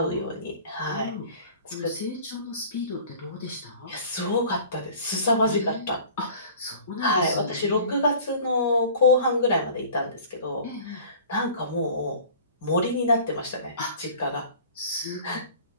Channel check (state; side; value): inverted; both; correlation -0.45